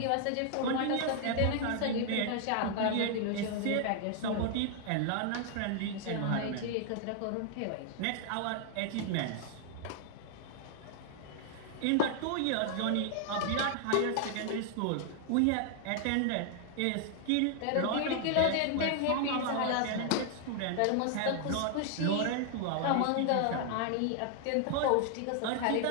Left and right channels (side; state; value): both; different; correlation 0.00